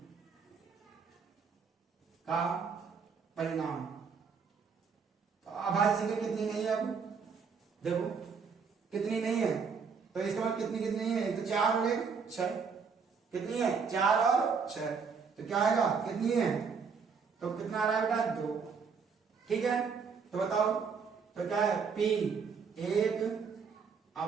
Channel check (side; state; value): left; quieter; 5.7 dB